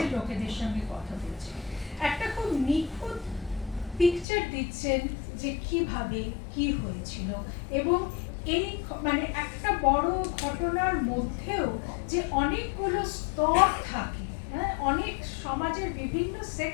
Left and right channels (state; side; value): drops out; right; at 4.2 s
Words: লোকেদের সঙ্গে কথা বলছে, একটা খুব নিখুঁত পিকচার দিচ্ছেন যে কিভাবে কি হয়েছিল, এবং এই মানে একটা বড় ঘটনার মধ্যেও যে অনেকগুলো স্তর থাকে, হ্যাঁ, অনেক সমাজের বিভিন্ন